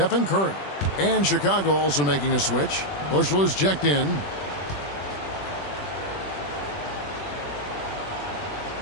Curry. And Chicago also making a switch. Bushler's checked in.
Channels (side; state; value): right; late; 21 ms